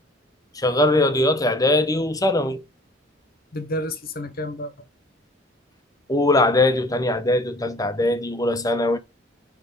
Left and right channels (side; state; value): both; normal; correlation 0.50